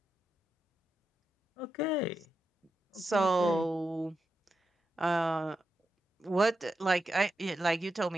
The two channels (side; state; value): both; normal; correlation 0.87